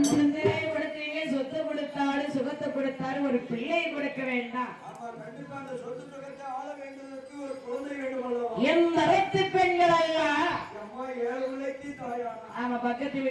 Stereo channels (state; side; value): identical; both; correlation 1.00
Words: கொடுத்தீங்க சொத்து கொடுத்தாலும் சுகத்தை கொடுத்தாலும் ஒரு பிள்ளை கொடுக்க வேண்டாம் என் மரத்து பெண்கள் அல்ல ஆமா பக்கத்து